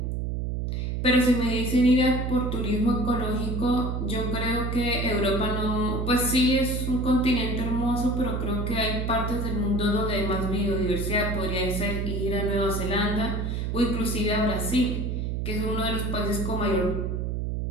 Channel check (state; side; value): noise; right; hum, 1 dB below the sound